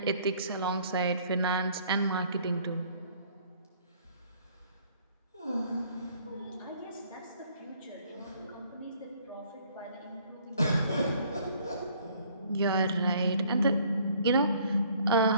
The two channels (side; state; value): both; inverted; correlation -0.60